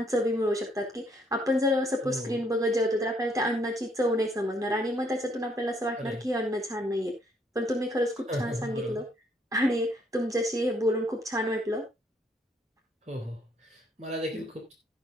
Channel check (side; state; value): both; normal; correlation 0.69